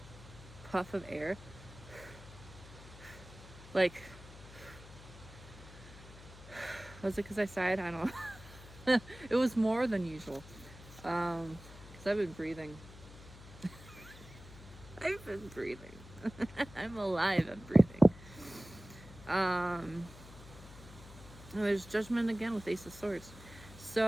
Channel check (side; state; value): left; noise; hum, 17 dB below the sound